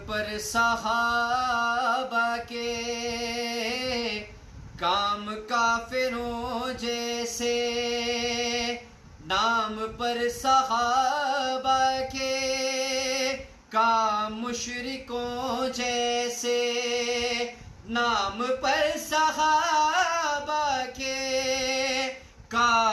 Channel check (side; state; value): both; identical; correlation 1.00